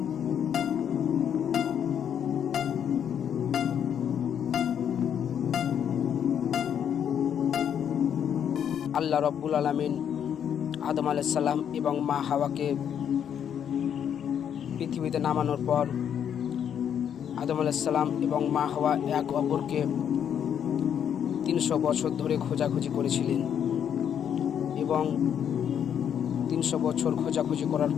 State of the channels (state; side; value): quieter; right; 8.7 dB